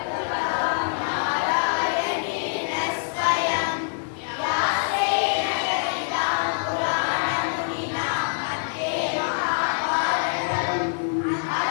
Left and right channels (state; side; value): silent; right; digital silence